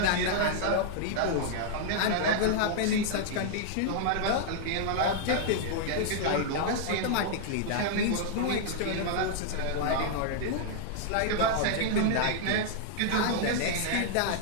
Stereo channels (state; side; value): different; both; correlation -0.01